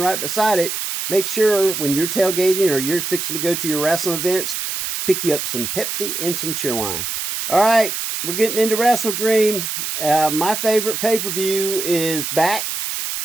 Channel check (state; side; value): noise; right; hiss, 4 dB below the sound